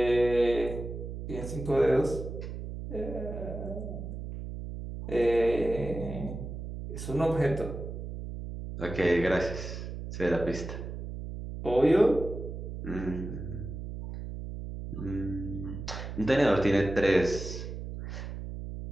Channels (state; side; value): noise; right; hum, 7 dB below the sound